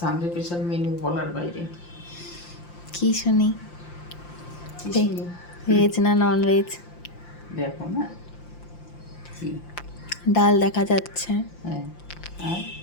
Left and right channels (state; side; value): late; right; 5.8 ms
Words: special menu বলার বাইরে। কি শুনি? কি শুনি? ভেজ না নন ভেজ? দেখো না কি। ডাল দেখা যাচ্ছে, হ্যাঁ, আর